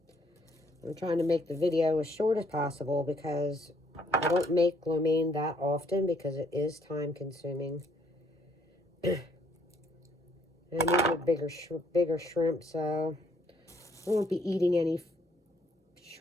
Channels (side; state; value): both; normal; correlation 0.67